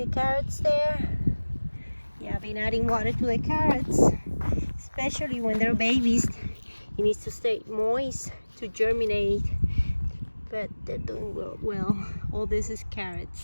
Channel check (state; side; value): inverted; both; correlation -1.00